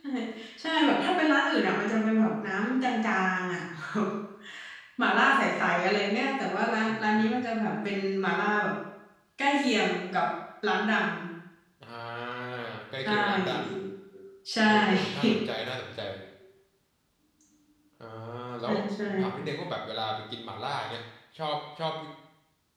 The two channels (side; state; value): both; identical; correlation 1.00